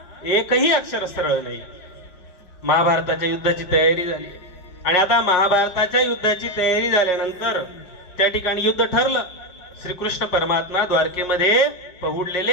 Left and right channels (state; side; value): late; right; 4.9 ms